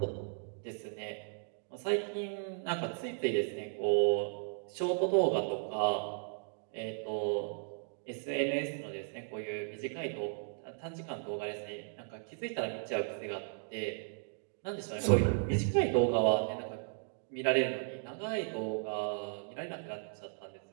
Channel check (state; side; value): silent; left; digital silence